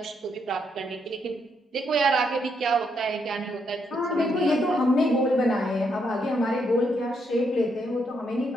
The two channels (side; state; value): both; normal; correlation 0.77